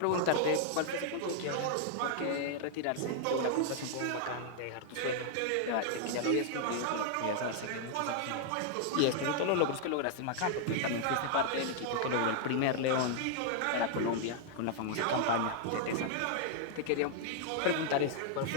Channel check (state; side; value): different; both; correlation -0.01